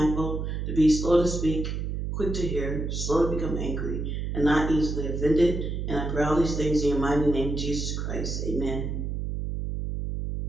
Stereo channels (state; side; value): noise; right; hum, 3 dB below the sound